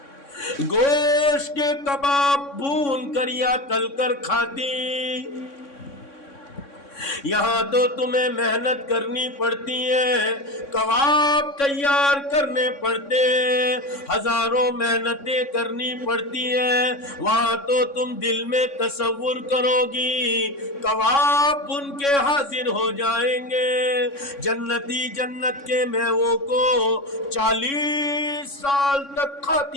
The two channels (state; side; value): late; right; 3.6 ms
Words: گوشت کے کباب بھون کر یا تل کر کھاتی۔ یہاں تو تمہیں محنت کرنی پڑتی ہے، کباب تیار کرنے پڑتے ہیں، ہزاروں محنتیں کرنی پڑتی ہیں، وہاں تو تم دل میں تصور کرو گی کباب بن کے حاضر ہو جائیں گے۔ جنتی جنت کے میووں کو 40 سال تک